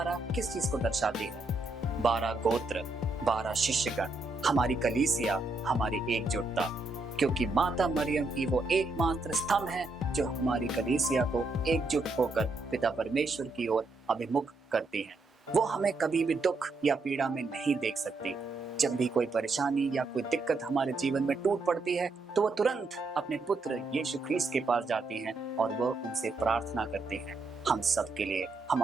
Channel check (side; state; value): left; quieter; 3.2 dB